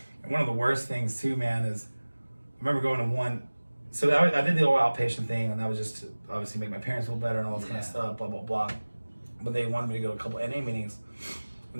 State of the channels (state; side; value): inverted; both; correlation -1.00